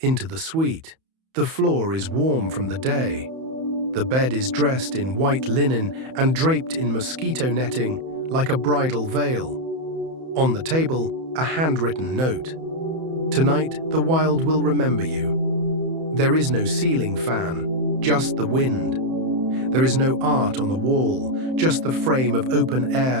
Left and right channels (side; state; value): left; late; 31 ms